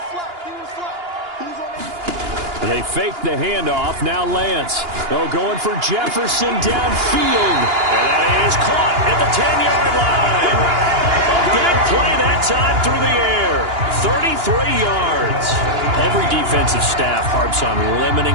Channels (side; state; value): left; late; 2.9 ms